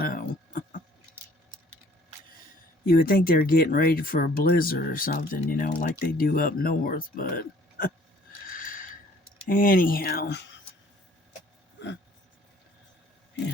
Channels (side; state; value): both; normal; correlation 0.57